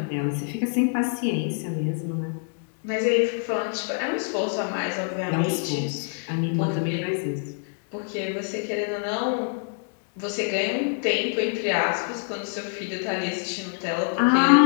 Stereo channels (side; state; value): right; silent; 56 dB below the other